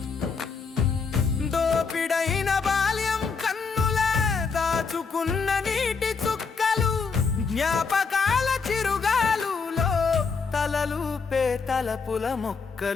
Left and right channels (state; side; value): quieter; right; 5.1 dB